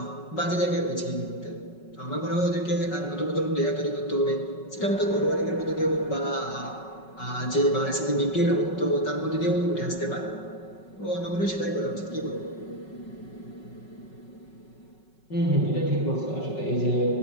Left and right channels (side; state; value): right; late; 5.4 ms